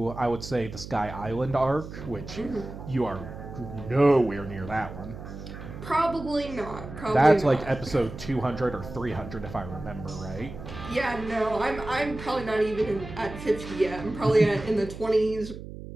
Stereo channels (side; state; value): right; noise; hum, 11 dB below the sound